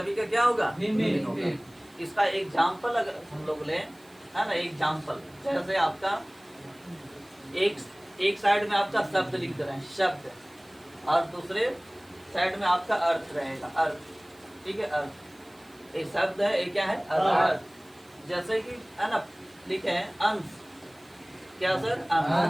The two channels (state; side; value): noise; right; hiss, 28 dB below the sound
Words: का क्या होगा, भिन्न होगा। इसका एग्जाम्पल अगर हम लोग लें, है ना, एग्जाम्पल जैसे आपका एक साइड में आपका शब्द लिख रहे हैं, शब्द, और दूसरे साइड में आपका अर्थ रहेगा, अर्थ, ठीक है। अर्थ, एक शब्द है, एक क्या है, अर्थ। जैसे कि है ना लिखे हैं अंश, क्या सर,